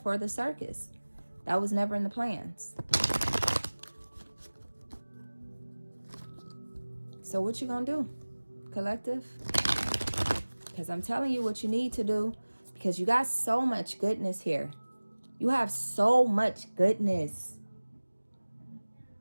for the circus. That was never in the plans. So what you gonna do, collective? Because I'm telling you what you need to do, because you got so much goodness here. You have so much goodness.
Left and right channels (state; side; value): inverted; both; correlation -1.00